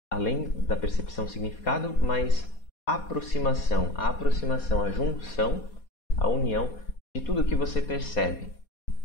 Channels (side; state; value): right; late; 4.2 ms